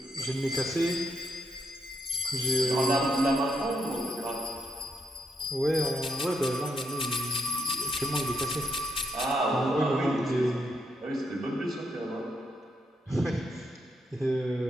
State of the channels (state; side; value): normal; both; correlation 0.80